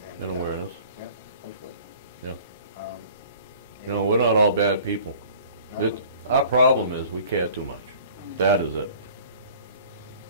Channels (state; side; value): inverted; both; correlation -0.49